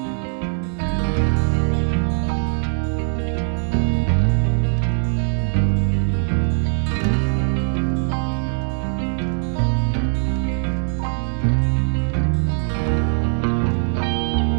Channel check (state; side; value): silent; left; 61 dB below the other